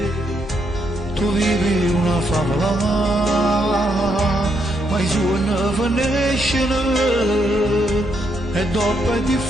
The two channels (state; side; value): normal; both; correlation 0.77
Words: Tu vivi una favola, ma i suoi non finiscono, e dopo è